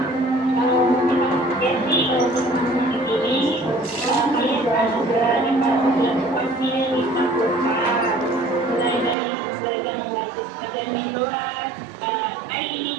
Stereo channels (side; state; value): left; drops out; at 9.2 s